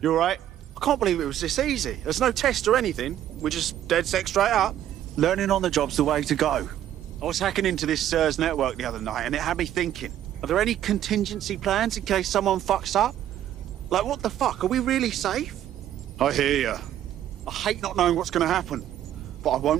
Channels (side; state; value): left; quieter; 11.5 dB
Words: all right? I can't believe it was this easy. There's no test or anything. We're just DedSec straight up. Learning on the job's the way to go. I was hacking into this SIRS network the other night and it had me thinking, are there any contingency plans in case someone fucks up? Like, what the fuck? Are we really safe? I hear you. I hate not knowing what's going to happen, but I